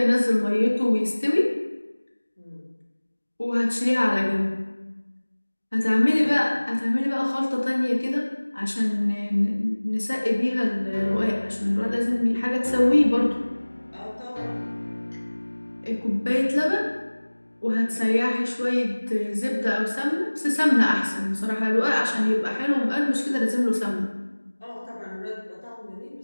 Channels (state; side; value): inverted; both; correlation -1.00